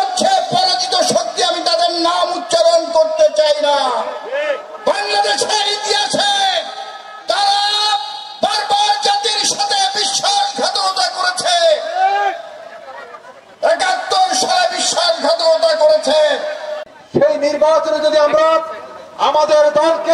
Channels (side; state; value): both; identical; correlation 1.00